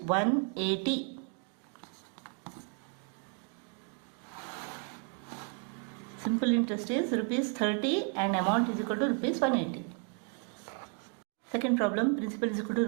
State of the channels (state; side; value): quieter; left; 36.1 dB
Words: Simple interest is rupees 30 and amount is equal to rupees 180. Second problem, principal is equal to